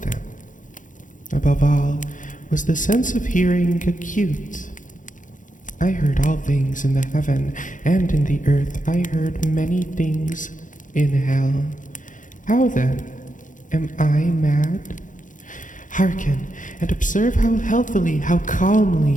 them. Above all, was the sense of hearing acute. I heard all things in the heaven and in the earth. I heard many things in hell. How then? Am I mad? Hearken, and observe how healthily, how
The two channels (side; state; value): right; late; 0.38 ms